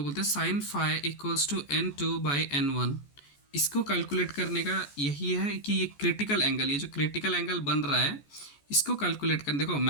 बोलते हैं sine phi equals to n2/n1, इसको कैलकुलेट करने का यही है कि ये क्रिटिकल एंगल, ये जो क्रिटिकल एंगल बन रहा है इसको कैलकुलेट कर। देखो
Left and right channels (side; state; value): right; late; 14 ms